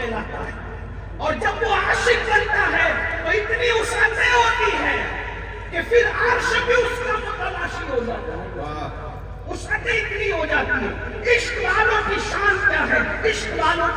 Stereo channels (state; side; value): identical; both; correlation 1.00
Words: ہے. اور جب وہ عاشق بنتا ہے تو اتنی وسعتیں ہوتی ہے کہ پھر عرش بھی اس کا متلاشی ہو جاتا ہے. وسعتیں اتنی ہو جاتی ہے. عشق والوں کی شان کیا ہے، عشق والوں